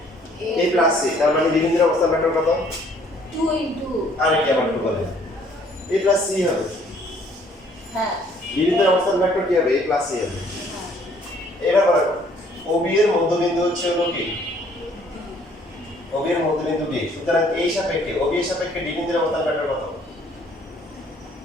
এ প্লাস সি তার মানে বি বিন্দুর অবস্থান ভেক্টর কত 2 ইনটু আর কি আবার একটু বলে এ প্লাস সি হবে হ্যাঁ বি বিন্দুর অবস্থান ভেক্টর কি হবে এ প্লাস সি হবে হ্যাঁ এবার বলো ও বি এর মধ্যবিন্দু হচ্ছে হলো কি ও বি এর মধ্যবিন্দু ডি সুতরাং এই সাপেক্ষে ও বি এর সাপেক্ষে ডি বিন্দুর অবস্থান ভেক্টর কত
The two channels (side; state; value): both; normal; correlation 0.61